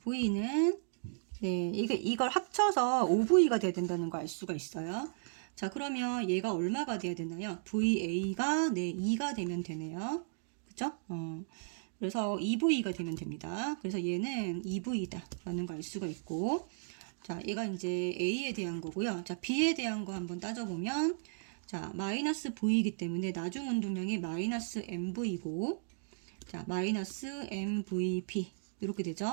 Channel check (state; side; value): silent; left; digital silence